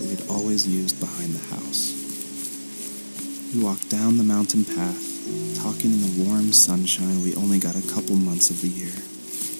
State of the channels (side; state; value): both; inverted; correlation -1.00